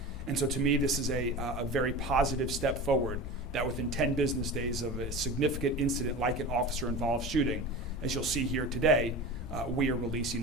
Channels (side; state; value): both; normal; correlation 0.31